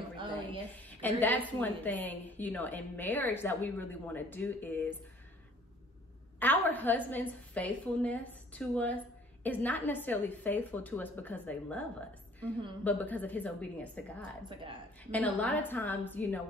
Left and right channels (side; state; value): both; normal; correlation 0.55